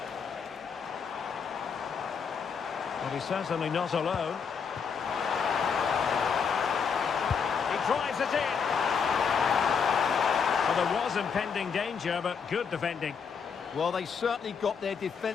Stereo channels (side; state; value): right; quieter; 6.3 dB